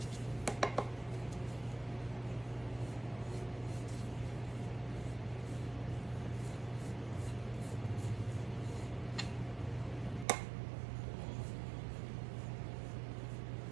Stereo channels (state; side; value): drops out; left; at 10.2 s